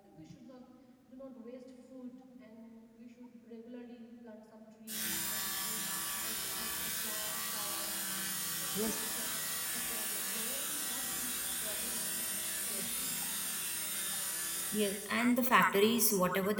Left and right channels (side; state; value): both; identical; correlation 1.00